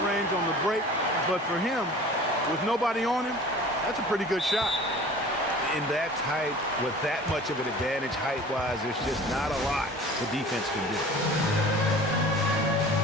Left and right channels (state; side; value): normal; both; correlation 0.43